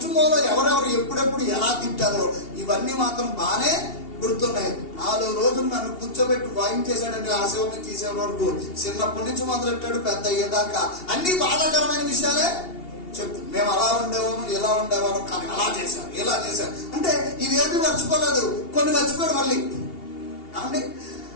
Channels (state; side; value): late; right; 2.8 ms